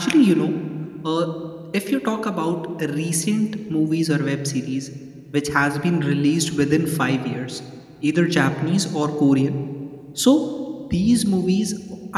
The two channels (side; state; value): both; identical; correlation 1.00